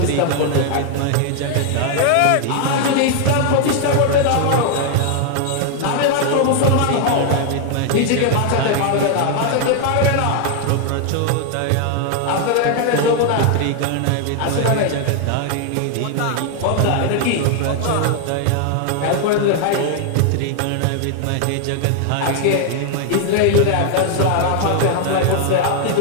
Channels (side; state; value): both; different; correlation 0.00